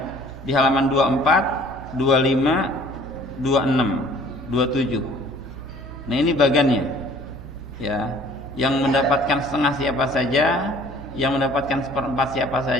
di halaman 24, 25, 26, 27. Nah, ini bagannya ya. Yang mendapatkan setengah siapa saja, yang mendapatkan 1/4 siapa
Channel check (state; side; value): noise; right; hum, 14 dB below the sound